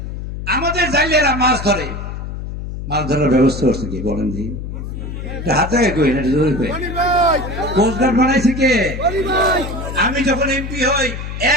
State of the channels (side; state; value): left; noise; hum, 7 dB below the sound